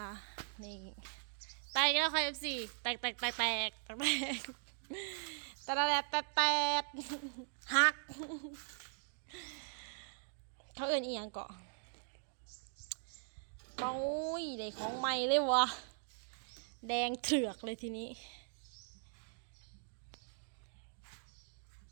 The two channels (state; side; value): silent; left; digital silence